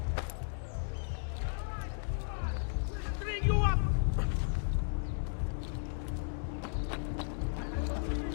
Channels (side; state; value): right; silent; digital silence